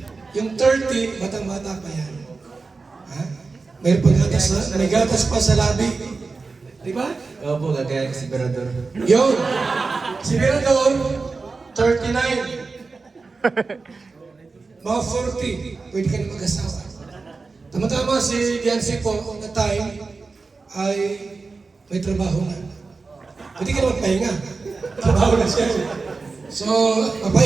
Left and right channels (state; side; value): quieter; left; 4.1 dB